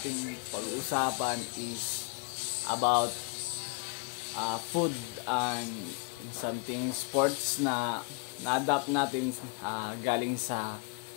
pag-uusapan is about food and something sports na na-adapt natin galing sa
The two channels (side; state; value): right; quieter; 33.4 dB